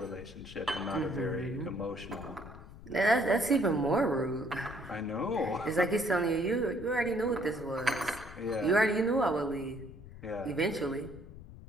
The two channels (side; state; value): left; noise; rumble, 16 dB below the sound